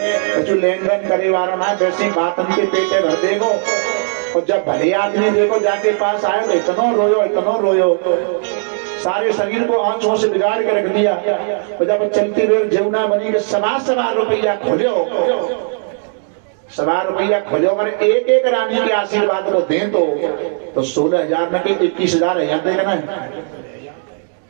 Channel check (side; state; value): left; silent; 60 dB below the other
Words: लेन देन करे वाला ना, वैसी बात उनके पेटे भर देगो। और जब भले आदमी देखो जाके पास आयो तो इतनो रोयो सारे शरीर को आंखों से बिगाड़ के रख दिया। और जब चलती हुए जमुना बनी के 1.25 रुपया खोलो, 1.25 रुपया खोलो। अगर एक एक रानी के आशीर्वाद को दें तो 16,000 में 21,000 है जाते ना।